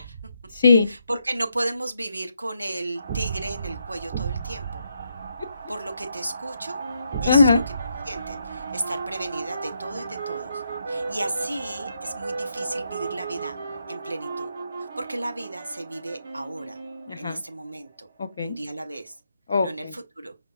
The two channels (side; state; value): both; inverted; correlation -0.80